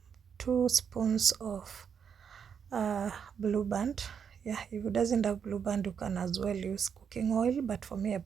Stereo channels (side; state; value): left; quieter; 7.2 dB